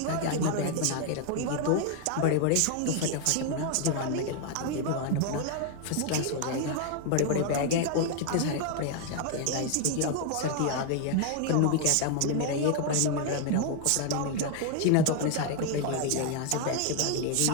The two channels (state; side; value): different; both; correlation 0.00